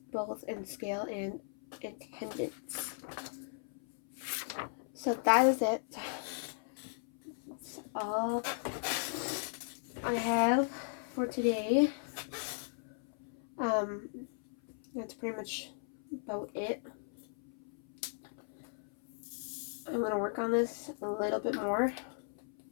both in scale and attendance. So that is it. That's all I have for today. That's pretty much about it. I'm going to work on this a little bit more.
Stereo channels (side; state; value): right; silent; 53 dB below the other